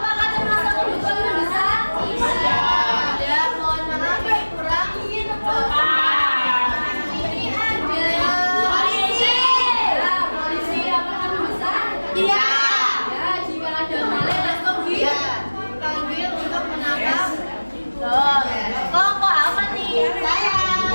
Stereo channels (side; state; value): both; inverted; correlation -1.00